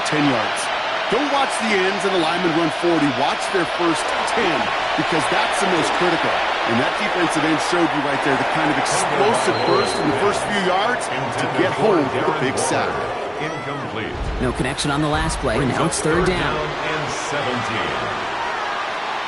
10 yards. Don't watch the ends and the linemen run 40. Watch their first 10 because that's the most critical. And that defensive end showed you right there the kind of explosive burst in the first few yards to get home with a big sack. Incomplete. No connection on the last play. Now it's third down. And 17.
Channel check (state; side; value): identical; both; correlation 1.00